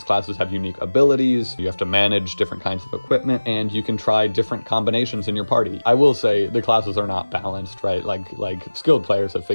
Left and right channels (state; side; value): inverted; both; correlation -1.00